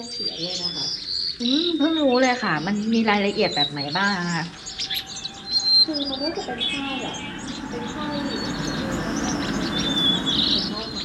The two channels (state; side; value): identical; both; correlation 1.00